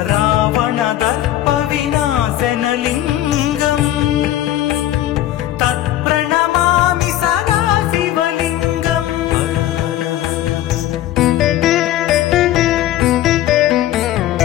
रावणदर्पविनाशनलिङ्गम् तत्प्रणमामि सदा शिवलिङ्गम्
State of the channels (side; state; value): right; quieter; 13.3 dB